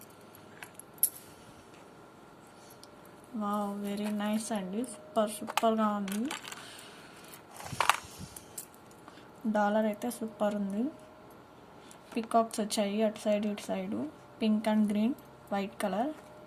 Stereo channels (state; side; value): identical; both; correlation 1.00